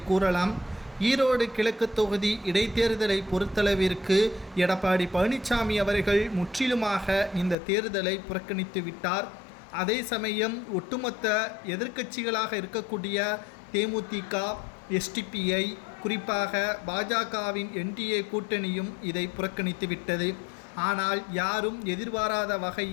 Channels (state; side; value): drops out; right; at 7.6 s